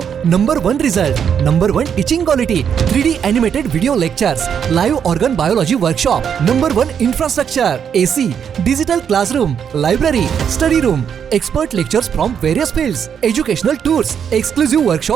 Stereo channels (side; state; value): left; quieter; 7.9 dB